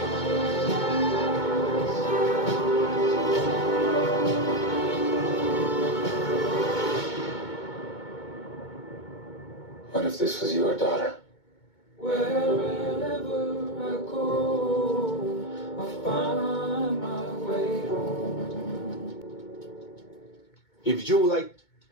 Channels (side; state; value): right; late; 2.2 ms